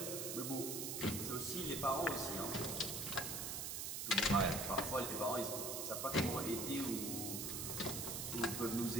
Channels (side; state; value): right; noise; hiss, 3 dB below the sound